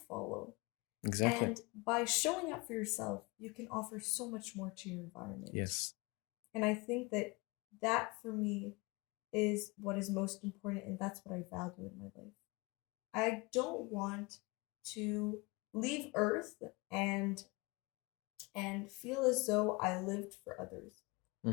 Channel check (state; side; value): quieter; right; 26.7 dB